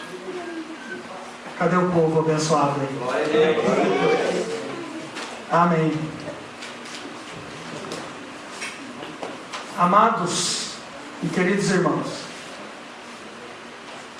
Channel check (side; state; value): both; identical; correlation 1.00